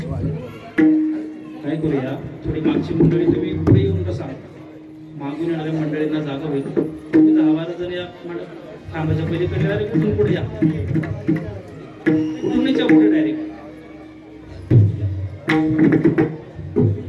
काय करूया, थोडी मागची मंडळी तुम्ही पुढे येऊन बसा. मागून येणाऱ्या मंडळींना जागा होईल. तुम्ही 10-12 जण या थांबाच्या पलीकडे डायरेक्ट कुठून पुढे या, कुठून या पुढे डायरेक्ट.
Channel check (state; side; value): identical; both; correlation 1.00